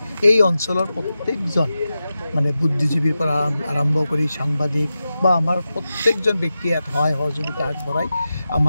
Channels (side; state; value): both; inverted; correlation -0.92